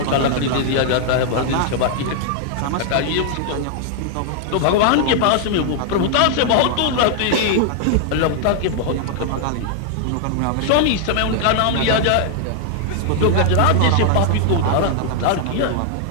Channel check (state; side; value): different; both; correlation 0.00